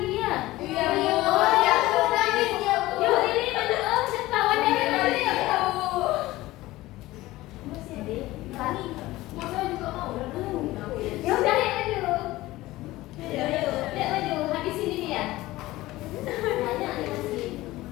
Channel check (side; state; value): right; quieter; 17.9 dB